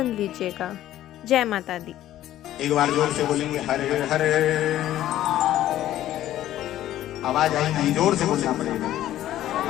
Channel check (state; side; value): quieter; right; 13.2 dB